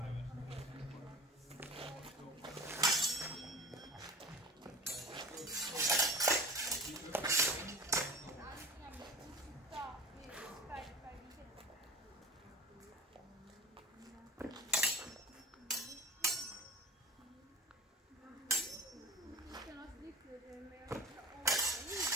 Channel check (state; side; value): normal; both; correlation 0.36